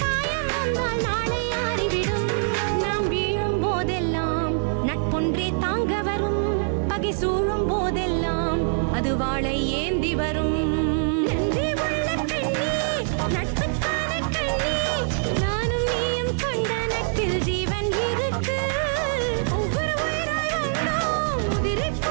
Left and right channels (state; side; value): silent; left; digital silence